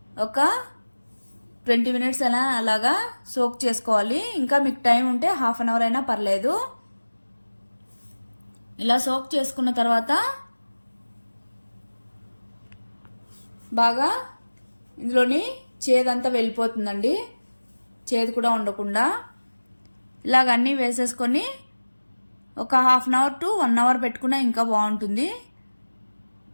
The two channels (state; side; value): inverted; both; correlation -1.00